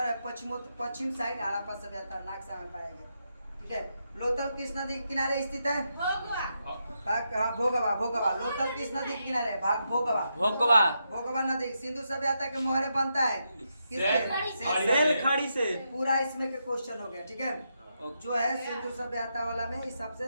पश्चिम साइड हड़प्पा सभ्यता नक्शा में पाया गया। ठीक है। लोथल किस नदी के किनारे स्थित है? भोगवा। लोथल किस नदी के किनारे है? भोगवा नदी। सिंधु सभ्यता के मोहरे बनता है किससे? सेल खड़ी से। पूरा इसमें के क्वेश्चन हो गया। ठीक है। जो है सिंधु सभ्यता वाला में इस सबसे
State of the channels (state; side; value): inverted; both; correlation -0.83